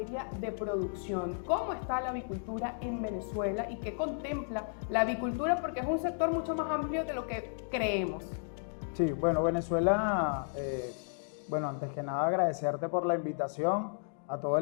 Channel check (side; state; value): right; silent; digital silence